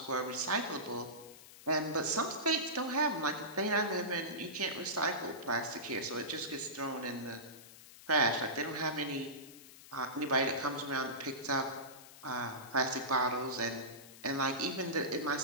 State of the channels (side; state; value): left; noise; hiss, 18 dB below the sound